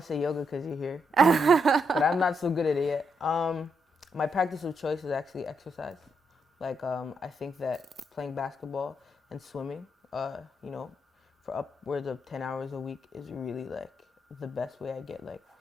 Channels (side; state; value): both; normal; correlation 0.79